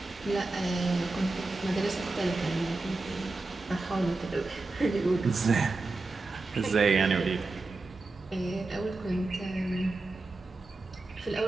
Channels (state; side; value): quieter; left; 3.4 dB